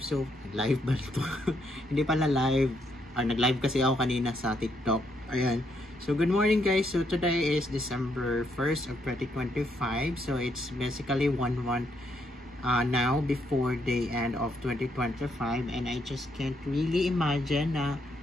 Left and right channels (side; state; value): both; normal; correlation 0.75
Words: live ba ito? Hindi pala live. Nag-live kasi ako kanina sa TikTok. Ayan. So, good morning guys. So, today is December 1st of 2025. So, it's basically 1 month now before the end of 2025. And I just can't really imagine na,